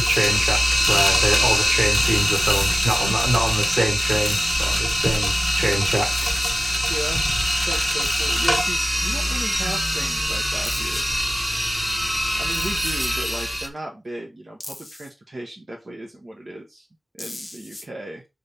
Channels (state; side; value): normal; both; correlation 0.96